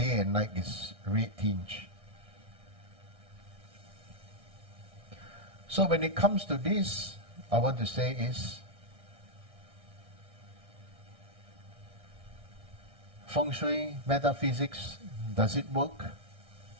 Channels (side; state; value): left; late; 1.6 ms